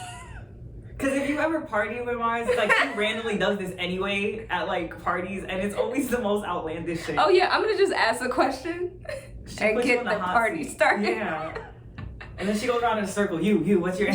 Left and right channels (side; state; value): both; identical; correlation 1.00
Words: Because if you ever party with Mars, she randomly does this anyway at parties, and it's always the most outlandish shit. Oh yeah, I'm gonna just ask a question and get the party started. Yeah. And then she goes around in a circle. You, what's your